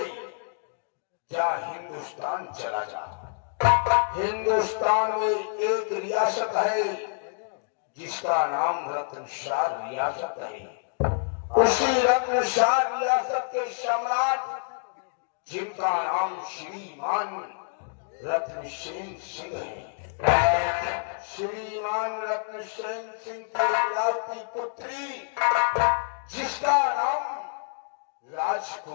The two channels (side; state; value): right; silent; digital silence